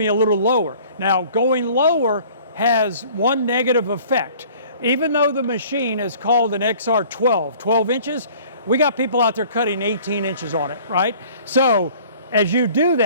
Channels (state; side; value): inverted; both; correlation -0.51